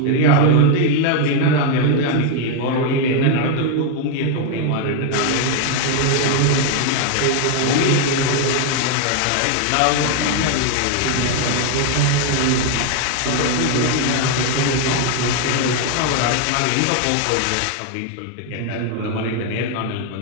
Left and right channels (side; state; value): both; different; correlation 0.01